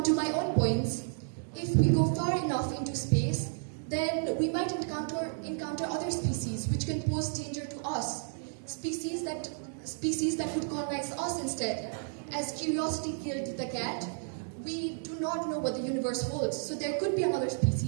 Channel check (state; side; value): silent; left; digital silence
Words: to my own points, if we go far enough into space, then we might encounter other species which can pose danger to us. Species that would colonize us instead. As curiosity killed the cat, we do not know what the universe holds. So there could be another